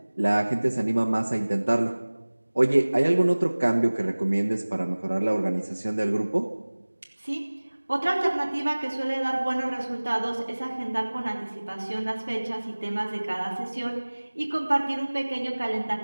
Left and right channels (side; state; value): both; inverted; correlation -1.00